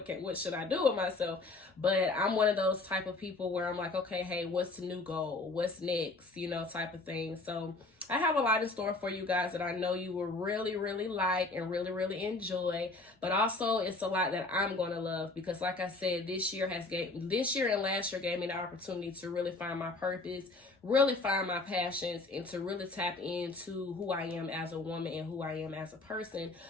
should I do with myself? But I'm one of those type of people where I'm like, okay, hey, what's the new goal? What's next? You know, type of thing. So I have a lot in store for you guys that I know you will really, really like and really, really enjoy. But also, it's a lot that I'm going to love, because like I said, this year and last year gave me the opportunity to really find my purpose, really find my passions, and to really tap into who I am as a woman and who I am as a person,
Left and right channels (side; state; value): right; quieter; 3.3 dB